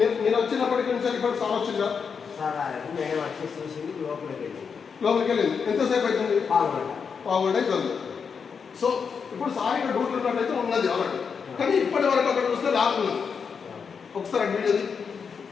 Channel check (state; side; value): quieter; right; 6.1 dB